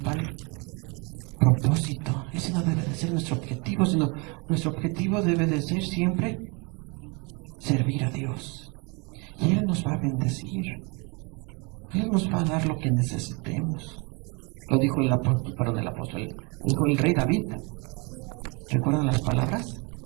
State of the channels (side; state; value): left; quieter; 30.8 dB